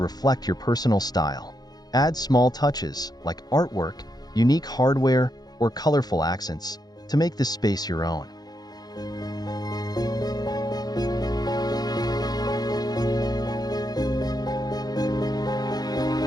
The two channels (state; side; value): late; right; 0.19 ms